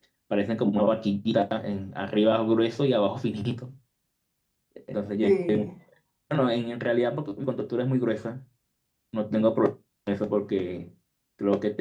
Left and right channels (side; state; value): both; identical; correlation 1.00